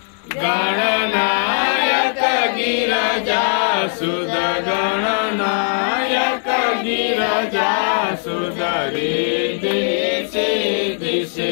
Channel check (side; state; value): right; silent; 67 dB below the other